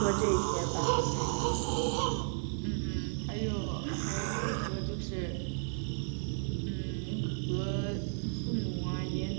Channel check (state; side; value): silent; left; 55 dB below the other